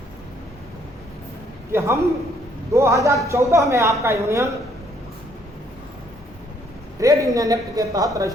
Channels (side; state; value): both; normal; correlation 0.67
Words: कि हम 2014 में आपका यूनियन ट्रेड यूनियन एक्ट के तहत